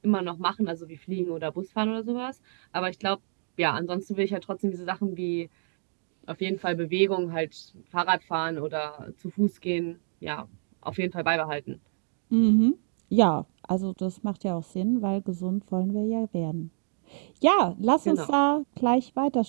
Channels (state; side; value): silent; left; digital silence